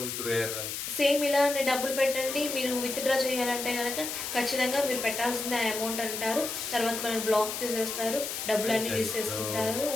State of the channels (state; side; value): noise; left; hiss, 5 dB below the sound